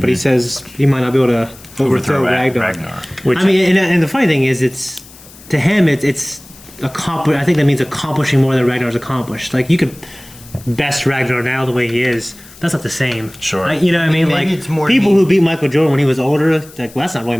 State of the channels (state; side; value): noise; left; hiss, 22 dB below the sound